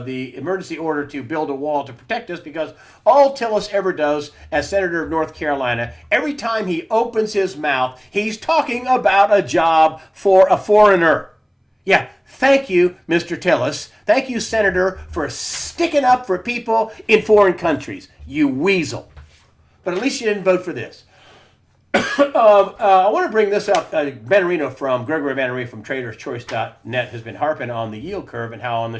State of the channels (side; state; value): both; identical; correlation 1.00